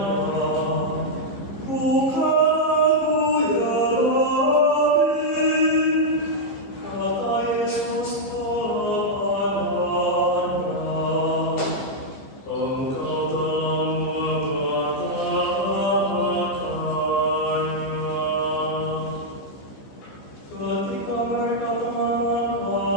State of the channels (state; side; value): late; right; 15 ms